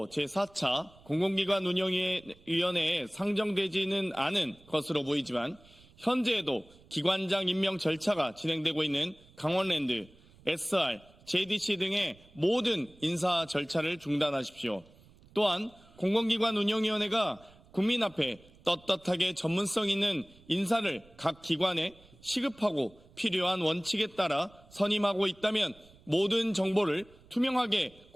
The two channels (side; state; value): right; noise; rumble, 26 dB below the sound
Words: 제4차 공공기관 운영위원회에 상정되지는 않은 것으로 보이지만 현재에도 기관장 임명 절차가 진행되고 있는 강원랜드, SR, JDC 등의 모든 인사 절차를 중단하십시오. 또한 공공기관 운영위원회가 국민 앞에 떳떳하게 전문성 있는 인사를 각 기관에 시급하고 필요한 원칙에 따라 선임하고 있다면 모든 정보를 투명하게